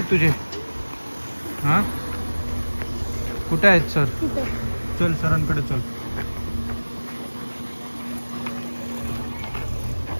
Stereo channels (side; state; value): both; inverted; correlation -1.00